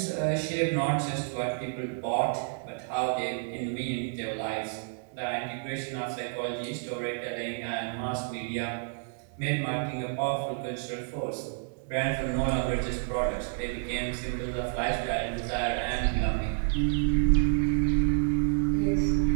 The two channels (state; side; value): silent; left; digital silence